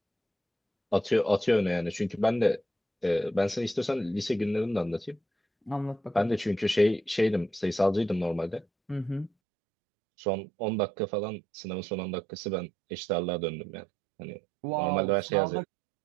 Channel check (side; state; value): left; drops out; at 9.3 s